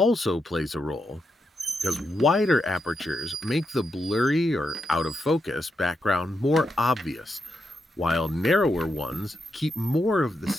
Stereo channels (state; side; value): normal; both; correlation 0.84